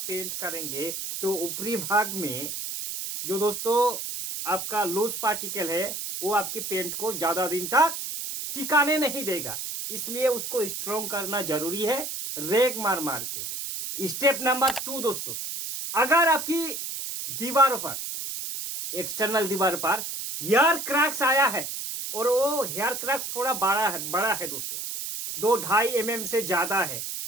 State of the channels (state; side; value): noise; right; hiss, 5 dB below the sound